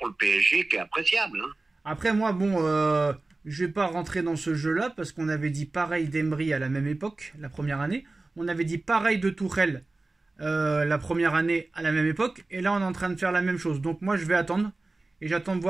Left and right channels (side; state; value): left; quieter; 3.3 dB